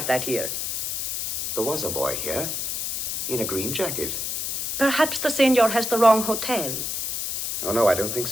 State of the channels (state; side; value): noise; left; hiss, 2 dB below the sound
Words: that here. There was a boy here, in a green jacket. Perhaps the senor has the wrong hotel. Oh, no, I don't think